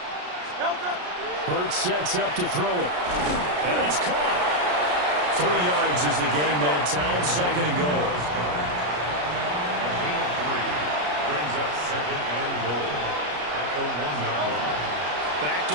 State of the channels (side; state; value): left; late; 33 ms